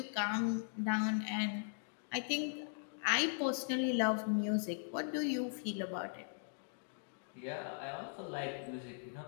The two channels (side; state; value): right; silent; digital silence